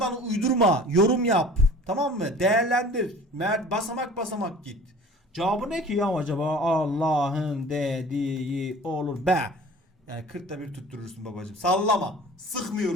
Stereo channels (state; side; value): normal; both; correlation 0.45